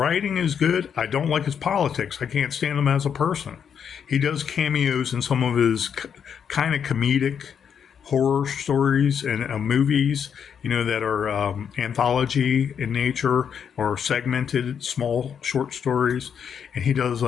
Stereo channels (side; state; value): right; quieter; 7.6 dB